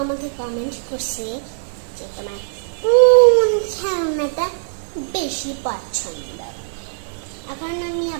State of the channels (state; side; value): silent; left; 62 dB below the other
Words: আমাকে কমেন্ট করছে যে তোমার কোন খেলনাটা বেশি পছন্দ। এখন আমি